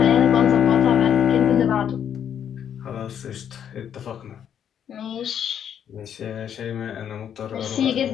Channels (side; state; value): right; quieter; 8.9 dB